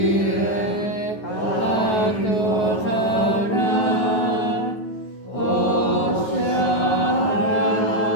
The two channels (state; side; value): late; right; 9.4 ms